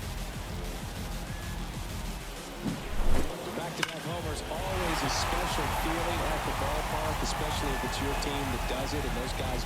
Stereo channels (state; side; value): identical; both; correlation 1.00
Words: Back-to-back homers, always a special feeling at the ballpark, especially if it's your team that does it and those guys